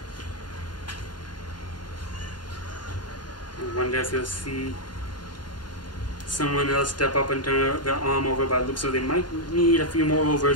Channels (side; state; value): both; normal; correlation -0.03